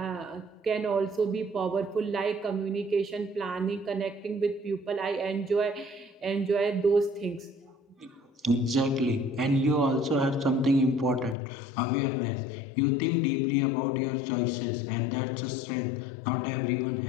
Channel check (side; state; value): right; drops out; at 11.4 s